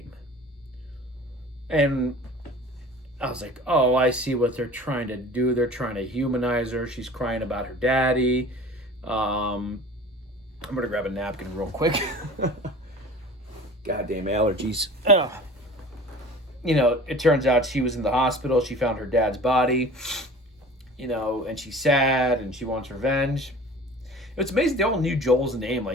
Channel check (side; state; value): both; normal; correlation 0.42